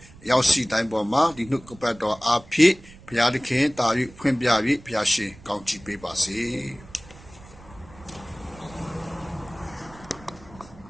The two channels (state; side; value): noise; right; rumble, 21 dB below the sound